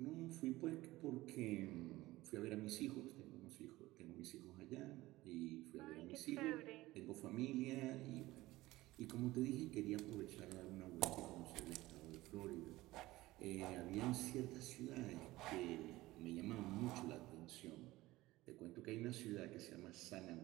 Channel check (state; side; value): quieter; left; 18.2 dB